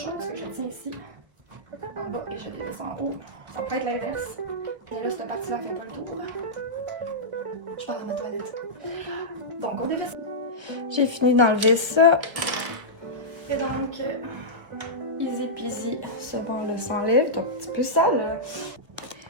parce que je tiens ici en bas et je dévisse en haut. Ça peut être l'inverse, mais là, cette partie-là fait pas le tour. Je pars à ma toilette. Donc, on dévisse. J'ai fini d'enlever ça. Et donc, easy peasy, ce banc-là s'enlève. C'est un petit peu sale.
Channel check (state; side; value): late; left; 1.5 ms